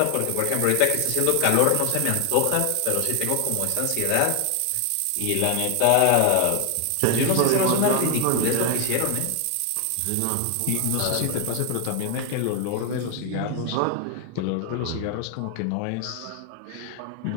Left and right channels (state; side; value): different; both; correlation 0.00